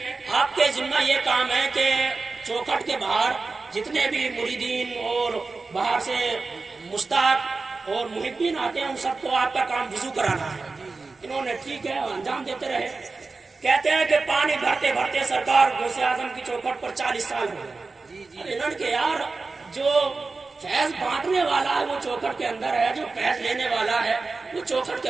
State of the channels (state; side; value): quieter; left; 3.9 dB